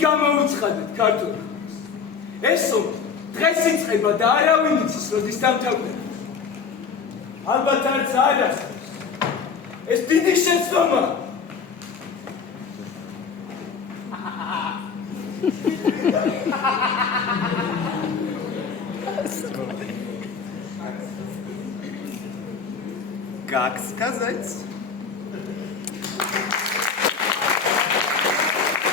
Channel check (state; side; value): quieter; right; 5.8 dB